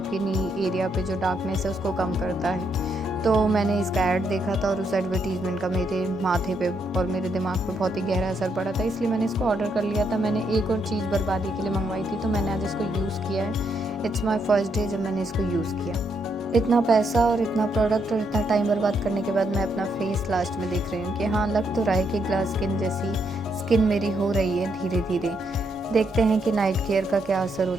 नी एरिया पे जो डार्कनेस है उसको कम करता है। तो मैंने इसका ऐड देखा था और उस एडवर्टीज़मेंट का मेरे माथे पे और मेरे दिमाग पे बहुत ही गहरा असर पड़ा था, इसलिए मैंने इसको ऑर्डर कर लिया था। मैंने एक और चीज़ बर्बादी के लिए मंगवाई थी, तो मैंने आज इसको यूज़ किया है। इट्स माई फर्स्ट डे जब मैंने इसको यूज़ किया। इतना पैसा और इतना प्रोडक्ट और इतना टाइम बर्बाद करने के बाद मैं अपना फेस लास्ट में देख रही हूँ कि हाँ, लग तो रहा है कि ग्लास स्किन जैसी स्किन मेरी हो रही है धीरे धीरे। देखते हैं कि नाइट केयर का क्या असर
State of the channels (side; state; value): both; normal; correlation 0.77